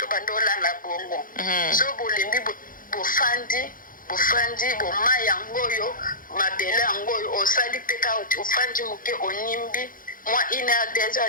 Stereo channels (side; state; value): right; late; 0.40 ms